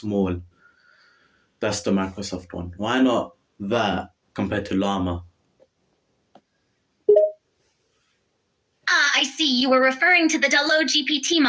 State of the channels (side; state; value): both; identical; correlation 1.00